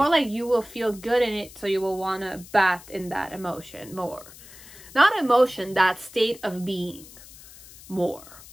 like you will feel good in it, so you will want to bath in that emotion more. Not emotion, that state of being more.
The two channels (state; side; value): noise; left; hiss, 19 dB below the sound